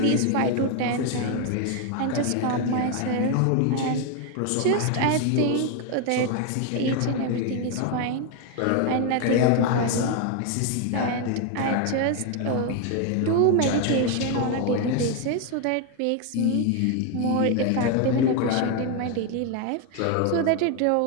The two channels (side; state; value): both; different; correlation 0.01